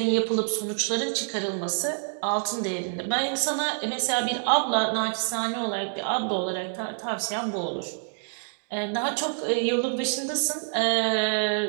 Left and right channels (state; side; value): silent; left; digital silence